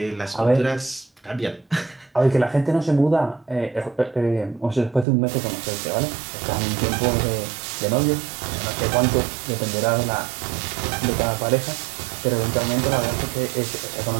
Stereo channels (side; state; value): left; drops out; at 5.1 s